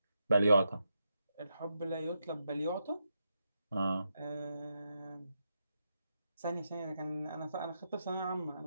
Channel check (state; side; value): inverted; both; correlation -0.84